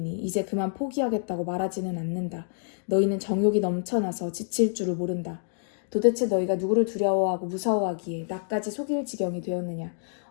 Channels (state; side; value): silent; right; digital silence